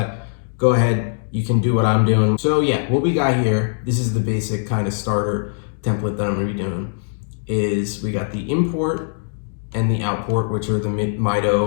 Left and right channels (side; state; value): right; silent; digital silence